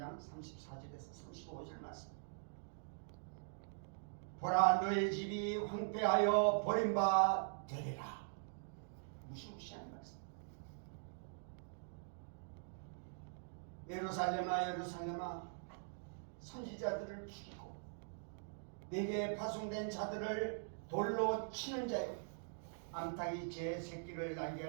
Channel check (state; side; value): silent; left; digital silence